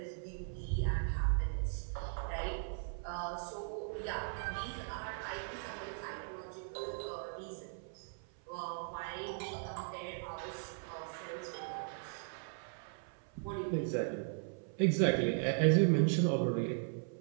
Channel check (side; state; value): left; silent; 52 dB below the other